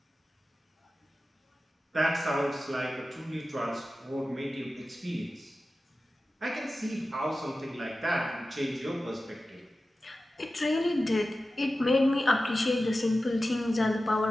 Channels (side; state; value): both; normal; correlation 0.94